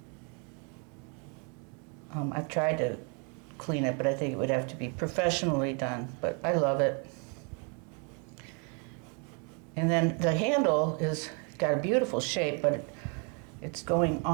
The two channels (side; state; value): left; quieter; 36.8 dB